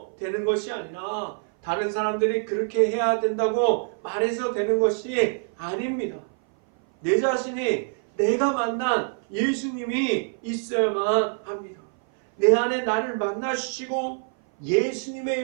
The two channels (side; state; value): left; silent; 57 dB below the other